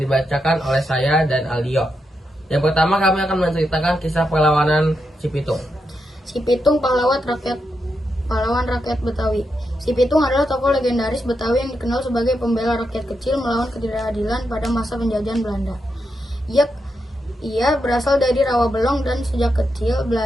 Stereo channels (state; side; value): normal; both; correlation 0.85